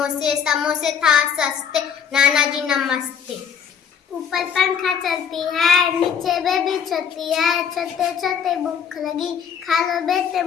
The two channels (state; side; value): quieter; right; 7.5 dB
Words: समोसे था सस्ते, नाना जी नमस्ते। ऊपर पंखा चलती है, नीचे बेबी चलती है, चलते चलते भूख लगी, खा लो बेटे